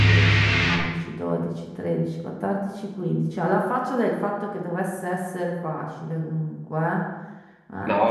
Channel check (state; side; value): identical; both; correlation 1.00